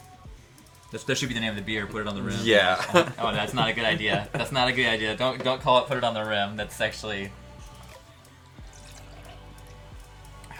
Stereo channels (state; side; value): identical; both; correlation 1.00